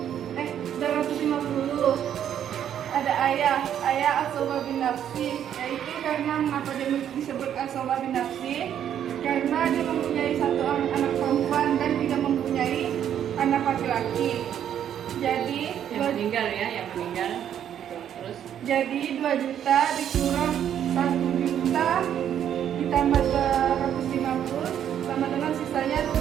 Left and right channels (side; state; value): left; quieter; 9.8 dB